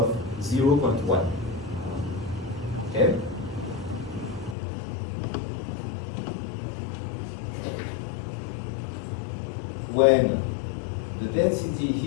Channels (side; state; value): right; drops out; at 4.5 s